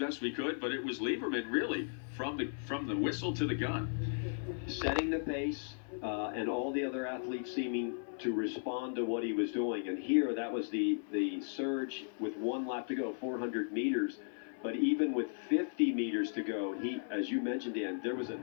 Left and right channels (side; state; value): right; silent; 54 dB below the other